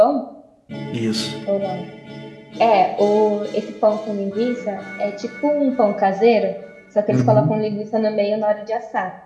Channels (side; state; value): both; identical; correlation 1.00